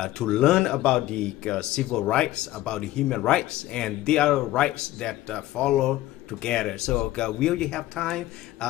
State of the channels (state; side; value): quieter; right; 15.8 dB